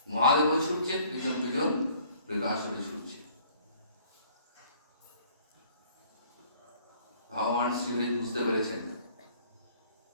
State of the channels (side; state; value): both; inverted; correlation -0.57